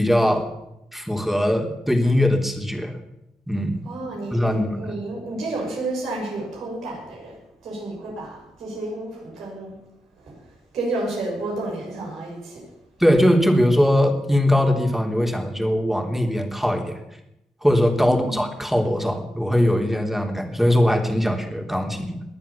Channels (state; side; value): normal; both; correlation 0.92